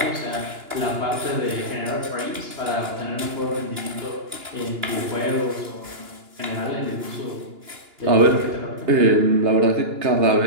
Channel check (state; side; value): late; left; 2.9 ms